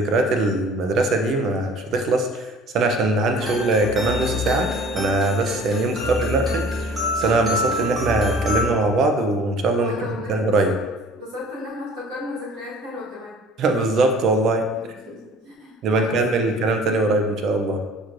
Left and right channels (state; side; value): normal; both; correlation 0.49